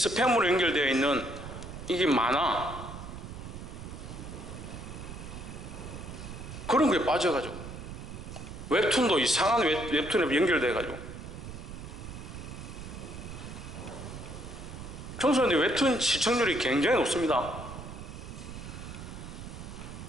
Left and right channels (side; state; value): right; noise; rumble, 10 dB below the sound